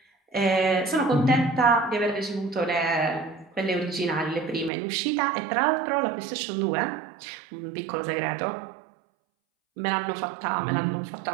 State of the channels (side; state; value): left; drops out; at 4.7 s